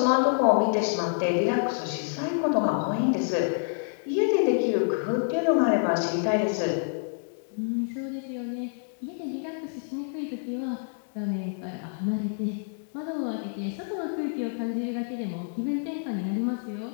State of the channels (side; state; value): right; silent; digital silence